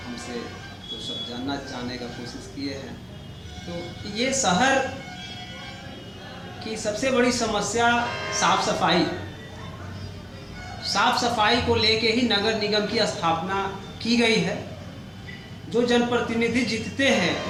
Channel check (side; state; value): both; identical; correlation 1.00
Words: हमसे तो सब जानने का कोशिश किए हैं। तो ये शहर की सबसे बड़ी समस्या साफ सफाई। साफ सफाई को लेके ही नगर निगम की स्थापना की गई है। जो जनप्रतिनिधि जीतते हैं